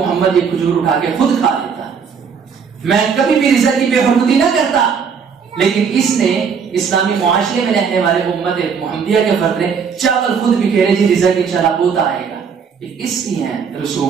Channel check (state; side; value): quieter; left; 6.3 dB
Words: یہ کھجور اٹھا کے خود کھا لیتا، میں کبھی بھی رزق کی بے حرمتی نہ کرتا. لیکن اس نے اسلامی معاشرے میں رہنے والے امت محمدیہ کے فرد نے چاول خود بکھیرے، جی رزق انشاءاللہ ہوتا آئے گا. اس کی ہیں